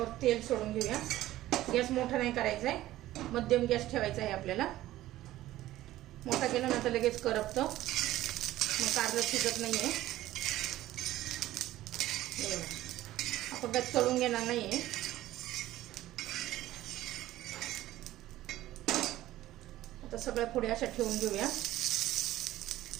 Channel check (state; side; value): quieter; left; 15.1 dB